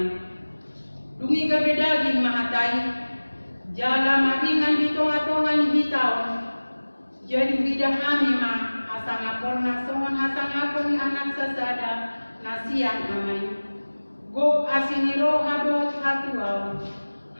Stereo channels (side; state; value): both; inverted; correlation -1.00